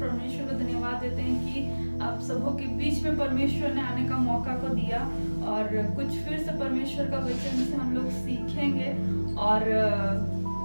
को धन्यवाद देते हैं कि आप सबों के बीच में परमेश्वर ने आने का मौका को दिया और कुछ फिर से परमेश्वर का वचन से हम लोग सीखेंगे और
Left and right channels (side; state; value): both; inverted; correlation -1.00